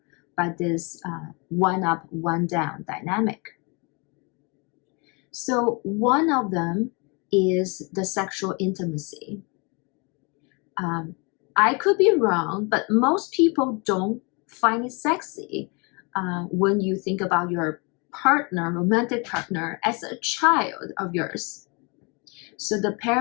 by this one up, one down dynamic. So one of them is the sexual intimacy. I could be wrong, but most people don't find it sexy when you think about your partner, romantic partner, as a child of yours. So the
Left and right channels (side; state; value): right; quieter; 31.3 dB